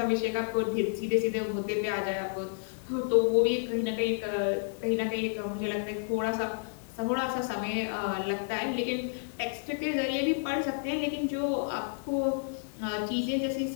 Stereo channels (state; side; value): silent; right; 57 dB below the other